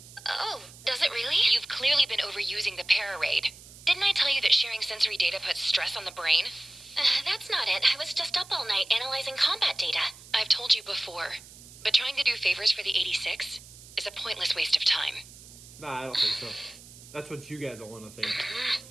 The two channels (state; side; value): noise; right; hiss, 19 dB below the sound